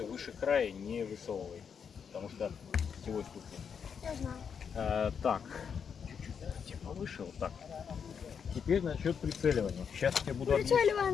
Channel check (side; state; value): right; quieter; 6.9 dB